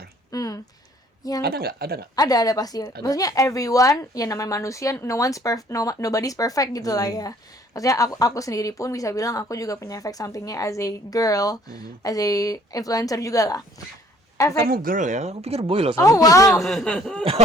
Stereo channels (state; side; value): normal; both; correlation 0.59